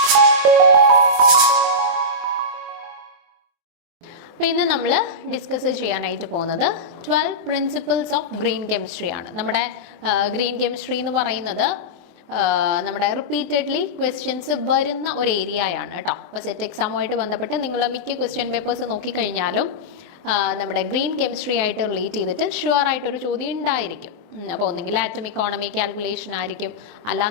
അപ്പോൾ ഇന്ന് നമ്മൾ ഡിസ്കസ് ചെയ്യാനായിട്ട് പോകുന്നത് 12 പ്രിൻസിപ്പിൾസ് ഓഫ് ഗ്രീൻ കെമിസ്ട്രി ആണ്. നമ്മുടെ ഗ്രീൻ കെമിസ്ട്രി എന്ന് പറയുന്നത് നമ്മുടെ റിപ്പീറ്റഡ്ലി ക്വസ്റ്റ്യൻസ് വരുന്ന ഒരു ഏരിയയാണ് കേട്ടോ. അപ്പോൾ സെറ്റ് എക്സാമുമായിട്ട് ബന്ധപ്പെട്ട് നിങ്ങൾ മിക്ക ക്വസ്റ്റ്യൻ പേപ്പേഴ്സ് നോക്കിക്കഴിഞ്ഞാലും നമ്മുടെ ഗ്രീൻ കെമിസ്ട്രി ആയിട്ട് റിലേറ്റ് ചെയ്തിട്ട് ഷുവർ ആയിട്ടൊരു ചോദ്യം ഉണ്ടായിരിക്കും. അപ്പോൾ ഒന്നെങ്കിൽ ആറ്റം ഇക്കോണമി കാൽക്കുലേഷൻ ആയിരിക്കും,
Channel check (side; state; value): left; late; 24 ms